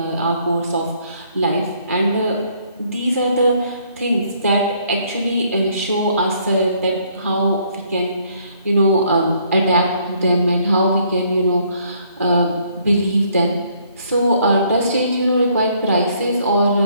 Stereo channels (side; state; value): both; inverted; correlation -0.66